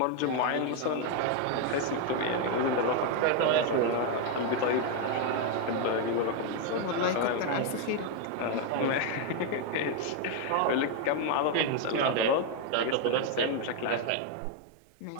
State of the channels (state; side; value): different; both; correlation 0.01